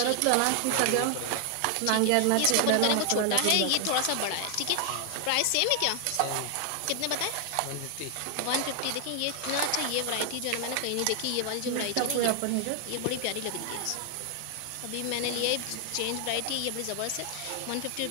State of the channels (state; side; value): different; both; correlation 0.00